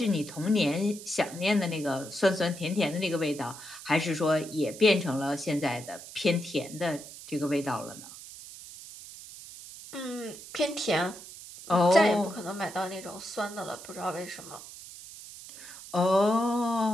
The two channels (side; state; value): right; noise; hiss, 15 dB below the sound